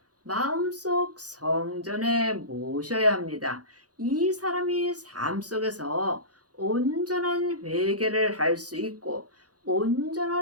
마음속 성전에 모셔야 합니다. 이 사람이 삶 속에서 온전한 회개를 할 수 있고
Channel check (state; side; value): late; left; 0.68 ms